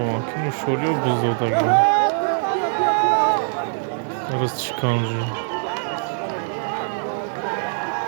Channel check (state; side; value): silent; left; digital silence